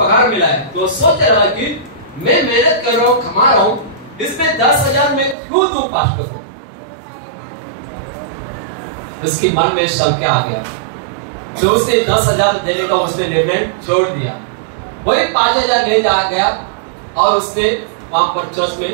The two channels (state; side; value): drops out; left; at 5.4 s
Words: मिला है, तो सोच रहा कि मैं मेहनत कर रहा हूँ, कमा रहा हूँ, इसमें 10,000 में क्यों दूं पास्टर को। उसकी मन में संख्या आ गया, जो उसने 10,000 देने का उसने निर्णय छोड़ दिया। वही 5,000 ले जा गया और उसने वहां पर चर्च